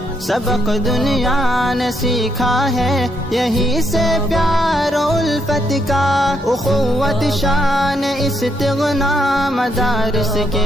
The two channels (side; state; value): both; normal; correlation 0.76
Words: सबक दुनिया ने सीखा है यहीं से प्यार उल्फत का। उखुवत शान इस्तिग़ना मदारिस